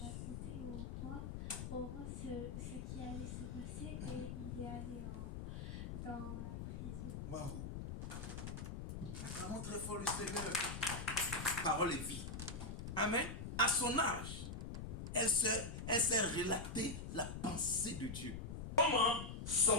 au roi ce qui allait se passer et il est allé dans la prison. Waouh! Acclamons très fort le Seigneur. Parole et vie. Amen. À son âge, elle s'est relatée la pensée de Dieu. Comment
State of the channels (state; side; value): noise; left; rumble, 6 dB below the sound